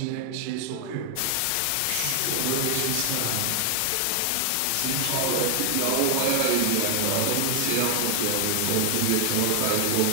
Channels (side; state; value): both; different; correlation 0.00